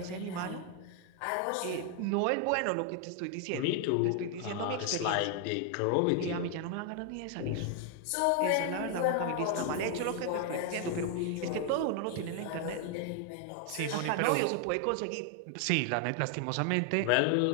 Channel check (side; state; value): both; different; correlation 0.00